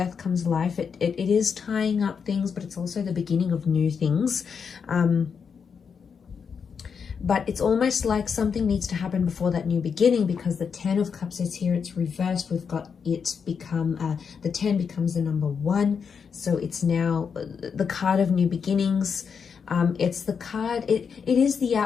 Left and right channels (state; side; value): quieter; right; 6.3 dB